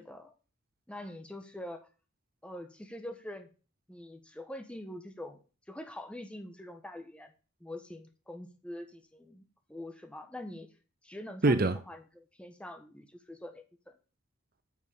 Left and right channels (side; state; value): both; normal; correlation 0.57